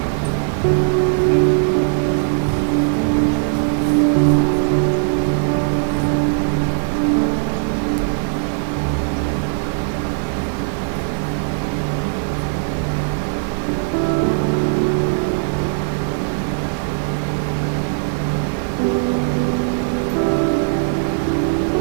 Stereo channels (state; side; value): silent; left; digital silence